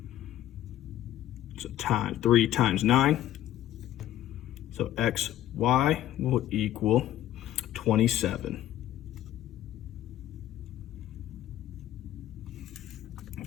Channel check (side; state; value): right; quieter; 12.8 dB